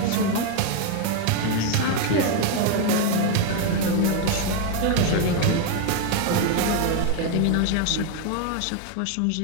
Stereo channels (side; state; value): both; different; correlation 0.01